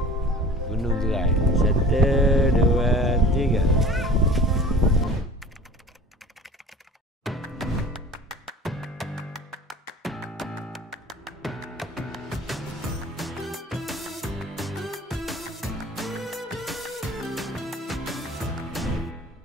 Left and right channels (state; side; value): normal; both; correlation 0.42